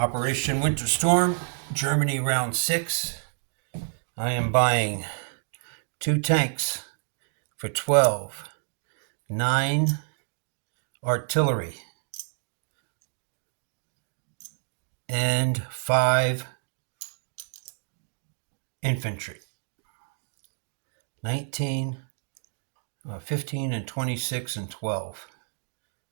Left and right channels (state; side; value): silent; left; digital silence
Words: Winter Storm, Germany Round 6. I am buying 2 tanks for 12, 9 artillery, and 5 infantry. 19, 15, and 26, and 12.